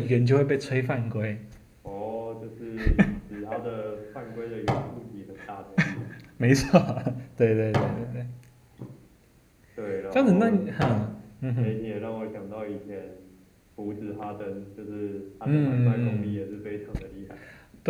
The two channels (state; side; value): identical; both; correlation 1.00